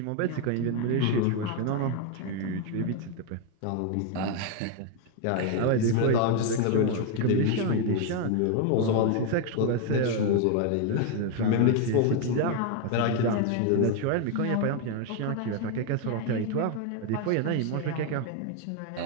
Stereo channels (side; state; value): both; different; correlation 0.01